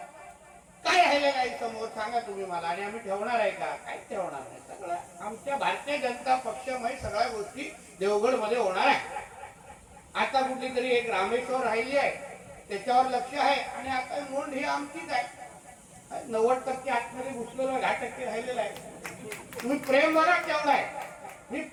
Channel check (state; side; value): identical; both; correlation 1.00